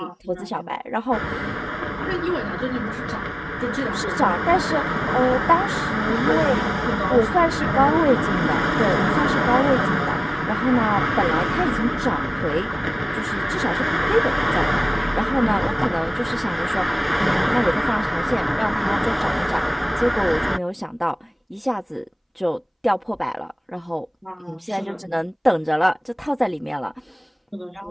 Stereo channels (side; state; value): both; identical; correlation 1.00